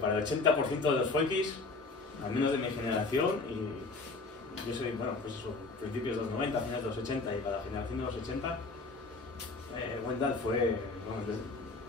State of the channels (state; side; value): quieter; right; 3.7 dB